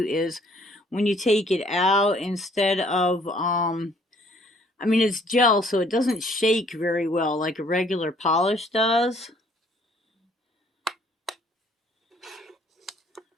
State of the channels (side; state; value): both; normal; correlation 0.61